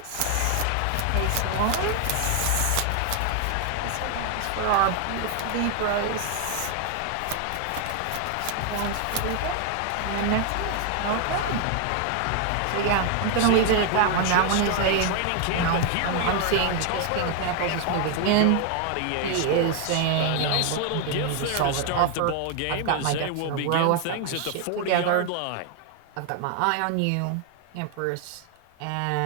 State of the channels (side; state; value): both; different; correlation 0.00